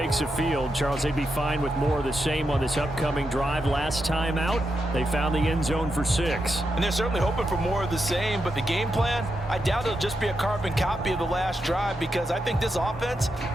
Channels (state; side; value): normal; both; correlation 0.85